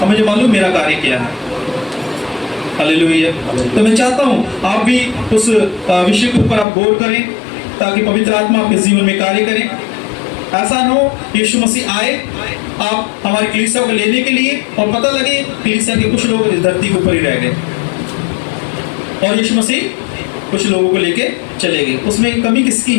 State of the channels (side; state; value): right; drops out; at 6.7 s